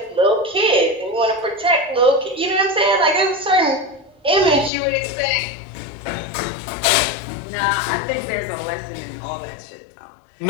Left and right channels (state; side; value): drops out; right; at 4.7 s